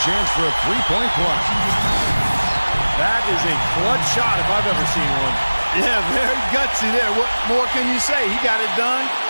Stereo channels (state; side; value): inverted; both; correlation -1.00